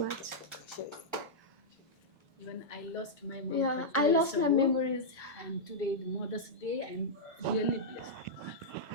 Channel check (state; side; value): normal; both; correlation -0.09